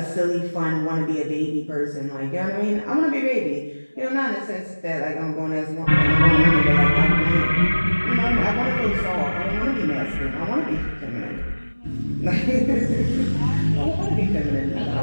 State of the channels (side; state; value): both; inverted; correlation -1.00